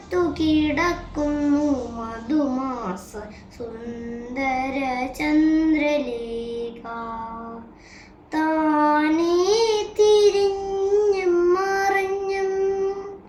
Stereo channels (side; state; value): both; identical; correlation 1.00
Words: കിടക്കുന്നു മധുമാസ സുന്ദര ചന്ദ്രലേഖ. താനേ തിരിഞ്ഞും മറിഞ്ഞും